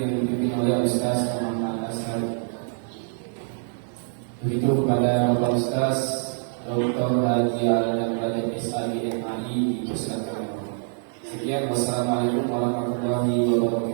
yang dipimpin oleh Ustaz Muhammad Ashari. Begitu kepada Bapak Ustaz Dr. Haji Adam Rajab SAD MAI dipersilakan. Sekian, wassalamualaikum warahmatullahi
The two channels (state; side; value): silent; left; 62 dB below the other